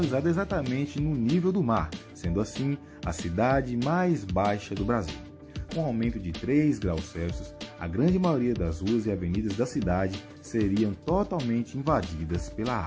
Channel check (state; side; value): identical; both; correlation 1.00